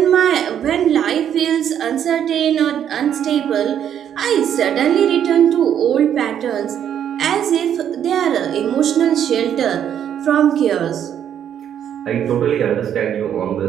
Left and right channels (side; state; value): left; quieter; 9.5 dB